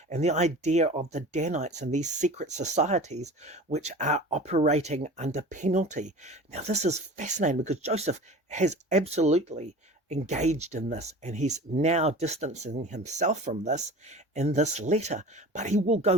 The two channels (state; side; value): normal; both; correlation 0.38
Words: and the idea of the Danites and these secret societies which are operating under penalty. Now, this is fascinating because Joseph has absolutely engaged in this, and he's now distancing himself from this in this letter. But he will go